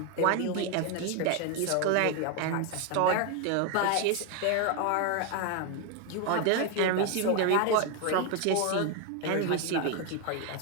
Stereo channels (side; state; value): both; different; correlation 0.01